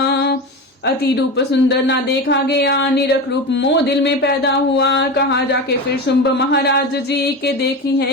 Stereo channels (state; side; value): normal; both; correlation 0.24